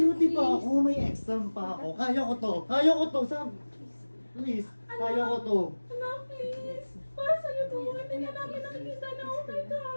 pa ako, may exam pa ako. Kaya ko to. Please, kaya ko to. Anak, please. Para sa'yo to. Hindi na namin nakikita na okay ka.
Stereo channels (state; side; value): inverted; both; correlation -1.00